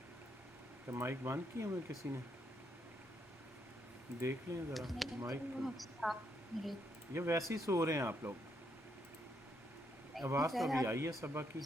क्या माइक बंद किया हुआ किसी ने? देख लें ज़रा माइक को। ये वैसे ही सो रहे हैं आप लोग? आवाज़ तो अभी आई है सबा की।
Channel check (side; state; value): both; normal; correlation 0.76